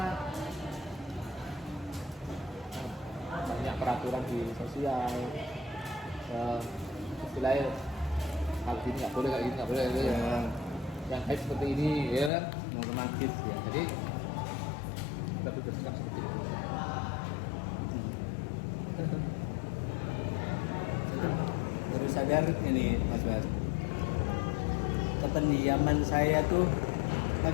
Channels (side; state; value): right; drops out; at 12.3 s